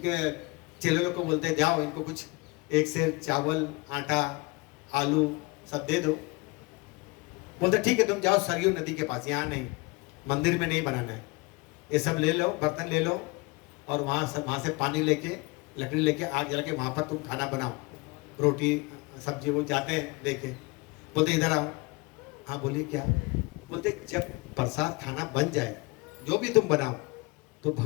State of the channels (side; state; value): right; quieter; 26.2 dB